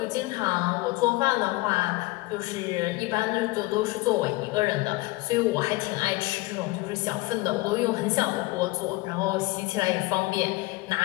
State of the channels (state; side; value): quieter; right; 21.3 dB